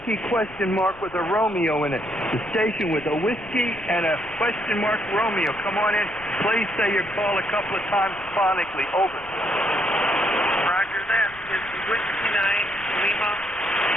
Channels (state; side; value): noise; left; rumble, 22 dB below the sound